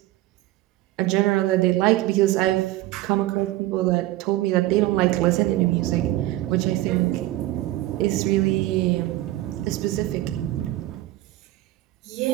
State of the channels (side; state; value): left; quieter; 16.4 dB